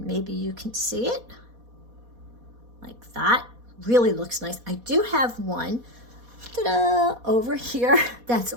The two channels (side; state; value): left; late; 4.2 ms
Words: maybe you can see it like that. Really looks nice. I do have one over here that's